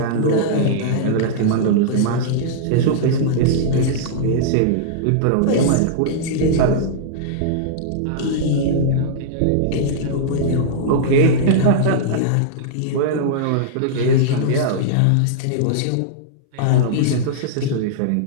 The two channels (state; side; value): different; both; correlation -0.02